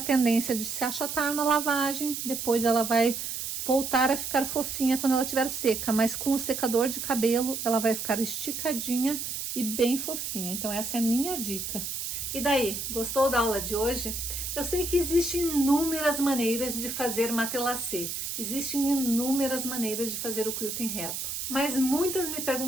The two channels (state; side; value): noise; right; hiss, 4 dB below the sound